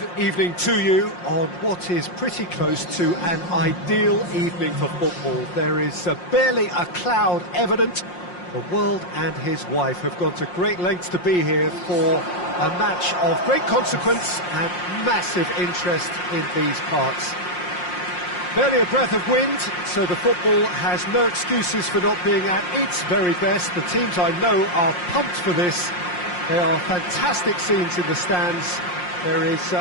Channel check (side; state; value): right; late; 5.6 ms